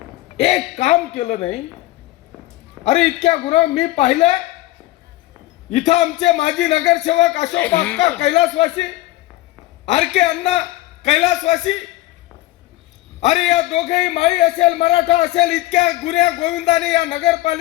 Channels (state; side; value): quieter; right; 17.1 dB